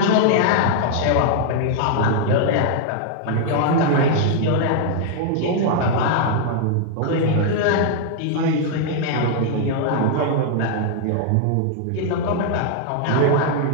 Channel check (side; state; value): both; different; correlation 0.00